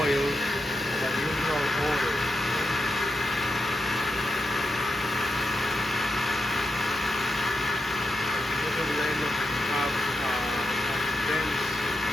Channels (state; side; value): normal; both; correlation 0.86